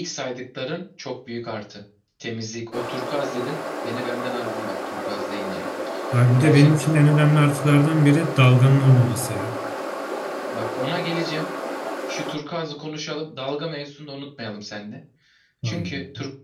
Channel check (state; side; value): identical; both; correlation 1.00